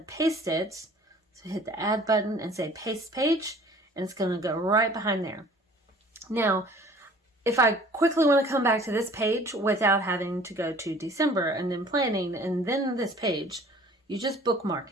paste it. So hit the add button and say paste page, and it's going to go right behind there. Now, if I quickly want to come back to this page without having to go to December and then planning and then this page, you just bookmark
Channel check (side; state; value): both; normal; correlation 0.51